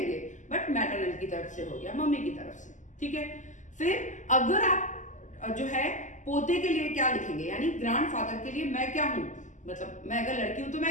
बट मैटरनल की तरफ से हो गया, मम्मी की तरफ से, ठीक है। फिर अगर आप जो है पोते के लिए क्या लिखेंगे, यानी ग्रैंडफादर के लिए मैं क्या हूं, मतलब मैं अगर लड़की हूं तो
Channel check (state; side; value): late; right; 0.36 ms